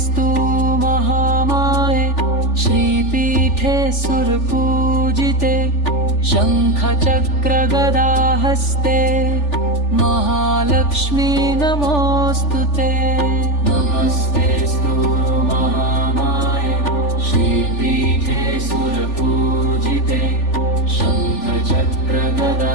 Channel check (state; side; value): late; right; 3.4 ms